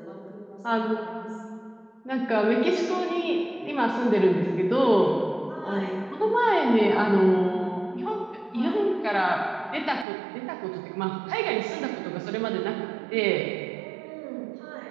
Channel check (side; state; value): left; drops out; at 10.1 s